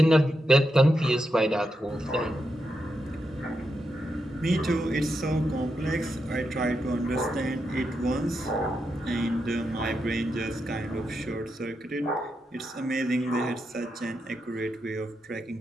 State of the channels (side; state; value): both; normal; correlation 0.85